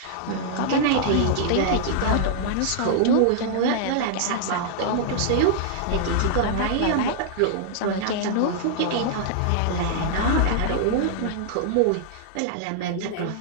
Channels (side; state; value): both; different; correlation -0.01